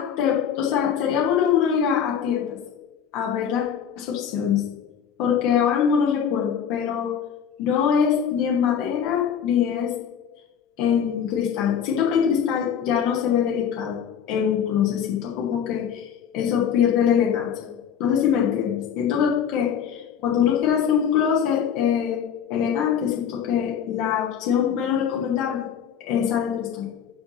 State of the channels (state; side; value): quieter; right; 8.2 dB